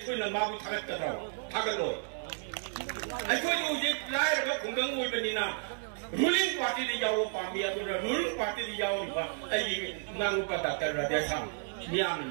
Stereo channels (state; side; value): silent; left; 56 dB below the other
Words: na mabu thagat kadra thagalo aikoi ju je lai ra khunggang oi bani na ruling party de yawo pami adu ruling party de yawo ba ai ngang pa ta ra de sam miam